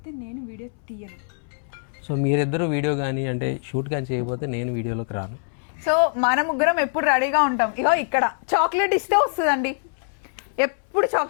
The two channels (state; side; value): silent; right; 63 dB below the other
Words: నేను వీడియో తీయను. సో మీరిద్దరు వీడియో కానీ అంటే షూట్ కానీ చేయకపోతే నేను వీడియోలోకి రాను. సో మన ముగ్గురం ఎప్పుడు రెడీగా ఉంటాం. ఇగో ఇక్కడ చాక్లెట్ ఇస్తే వస్తుందండి, ఎప్పుడు